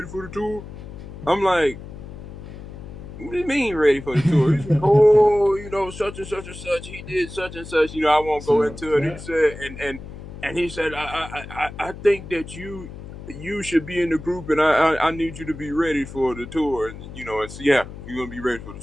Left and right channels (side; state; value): left; noise; hum, 13 dB below the sound